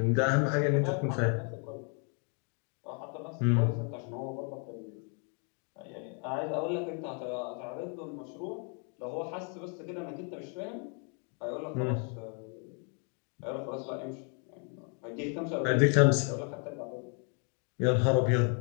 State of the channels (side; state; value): right; quieter; 39.9 dB